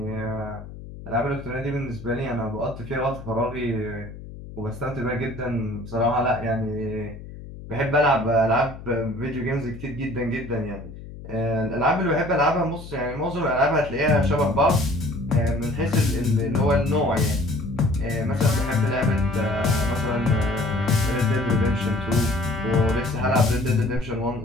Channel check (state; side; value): noise; left; hum, 14 dB below the sound